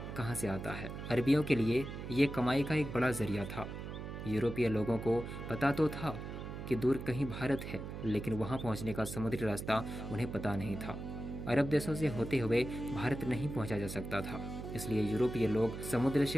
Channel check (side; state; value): right; noise; hum, 8 dB below the sound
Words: कहां से आता है। अरबियों के लिए ये कमाई का एक बड़ा जरिया था। यूरोपीय लोगों को पता तो था कि दूर कहीं भारत है, लेकिन वहां पहुंचने का समुद्री रास्ता उन्हें पता नहीं था। अरब देशों से होते हुए भारत नहीं पहुंचा जा सकता था, इसलिए यूरोपीय लोग समुद्र